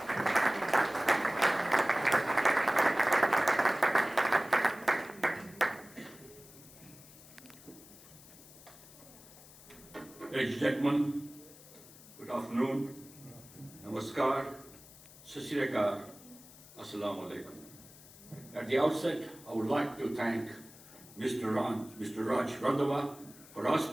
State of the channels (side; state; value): left; noise; hiss, 20 dB below the sound